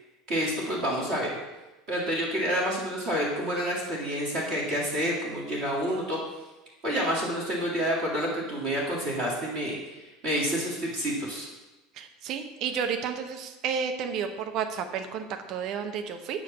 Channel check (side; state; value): both; normal; correlation 0.38